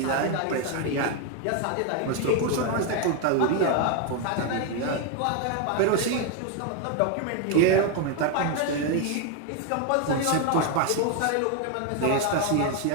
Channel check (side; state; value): both; different; correlation 0.01